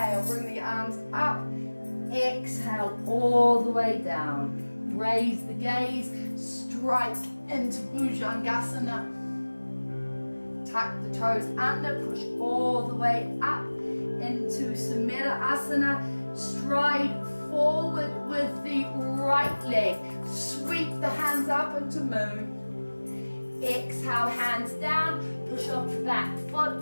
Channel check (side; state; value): both; inverted; correlation -1.00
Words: bring the arms up. Exhale all the way down. Raise the gaze, strike into Bhujangasana. Tuck the toes under, push all the way up into Sumedha Asana. Stride forward with the right leg. Sweep the hands up into moon. Exhale, hands down. Push off the back foot.